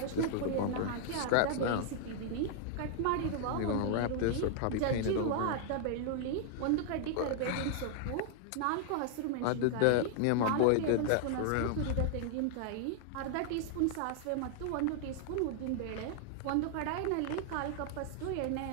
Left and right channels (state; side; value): different; both; correlation 0.00